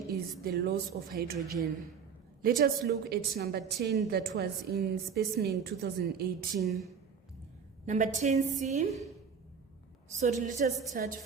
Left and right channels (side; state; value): left; quieter; 6.5 dB